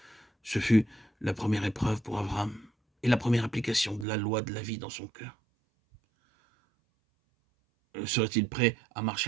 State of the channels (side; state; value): left; drops out; at 4.0 s